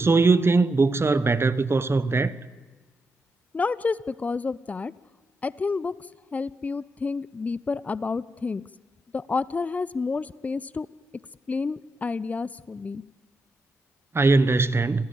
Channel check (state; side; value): normal; both; correlation 0.84